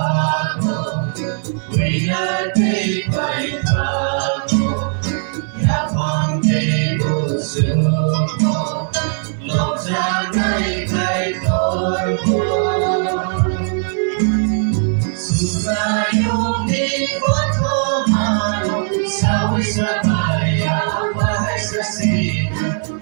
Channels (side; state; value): left; silent; 67 dB below the other